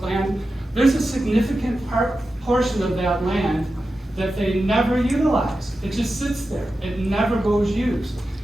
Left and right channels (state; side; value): normal; both; correlation 0.92